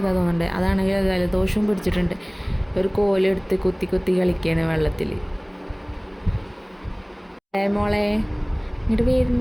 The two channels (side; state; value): both; identical; correlation 1.00